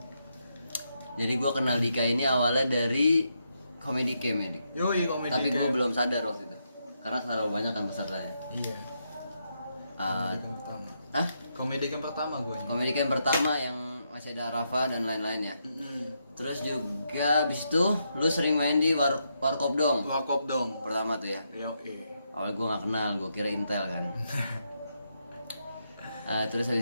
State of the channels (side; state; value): both; inverted; correlation -0.81